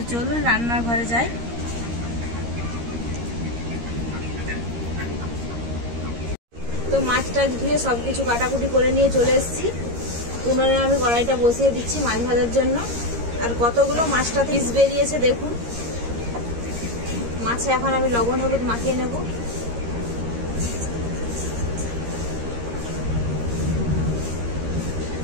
চলুন রান্নার ঘরে যাই। তো মাছটা ধুয়ে সব কিছু কাটাকুটি করে নিয়ে চলে এসেছি। উনুনে আমি কড়াইটা বসিয়ে দিচ্ছি মাছ ভাজার জন্য। আর কতগুলো মাছটা পিস বেরিয়েছে দেখুন। মাছে এখন আমি লবণ হলুদ মাখিয়ে নেব।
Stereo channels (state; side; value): late; left; 13 ms